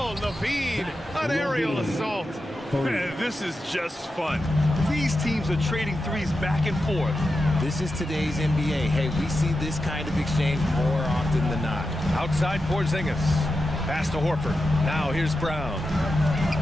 Levine, an aerial assault. Man, this is just fun. These teams are trading threes back and forth. This is today's NBA. Hey, we see this kind of exchange more often than not. Outside Porzingis. Pass to Horford. Now here's Brown.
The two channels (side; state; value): both; normal; correlation 0.90